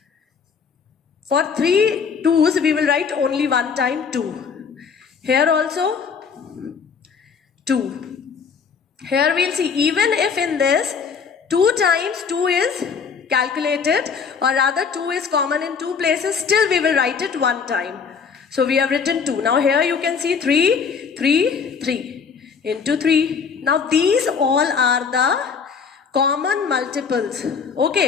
For 3 2s, we will write only one time 2. Here also 2. Here we'll see, even if in this 2 times 2 is calculated, or rather 2 is common in 2 places, still we will write it one time. So we have written 2. Now here you can see 3, 3, 3 into 3. Now these all are the common multiples.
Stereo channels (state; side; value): quieter; right; 6.0 dB